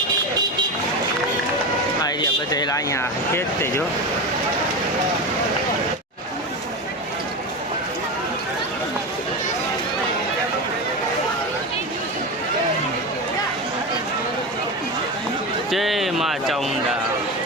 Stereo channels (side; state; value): both; normal; correlation 0.21